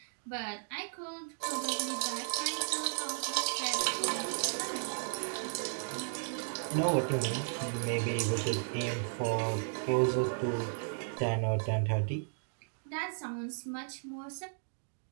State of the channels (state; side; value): silent; left; digital silence